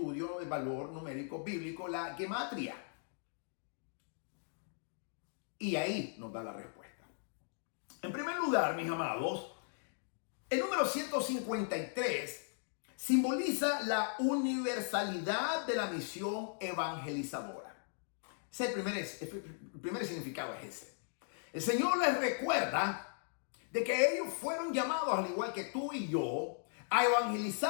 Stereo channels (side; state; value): right; silent; digital silence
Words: del valor numérico bíblico, la gematria. Y ahí nos da la respuesta. En primer lugar, mis amados, el número 153 simboliza la universalidad de la misión evangelizadora. Ese es el primer significado es ese. El Señor les recuerda de que ellos fueron llamados, al igual que tú y yo, a